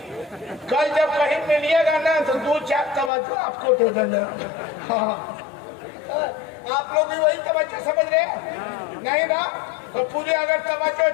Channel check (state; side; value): drops out; right; at 3.1 s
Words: कल जब कहीं मिलिएगा ना तो 2-4 तवज्जो आपको दे देंगे। हाँ, आप लोग भी वही तवज्जो समझ रहे हैं नहीं ना? तो पूरे अगर तवज्जो,